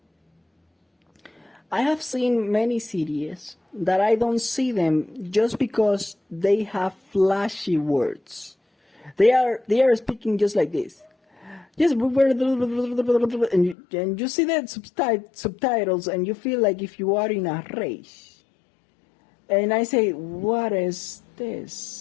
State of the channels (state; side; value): drops out; right; at 13.8 s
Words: I have seen many series that I don't see them just because they have flashy words. They are speaking just like this. Yes, and you see the subtitles and you feel like if you are in a race. And I say, what is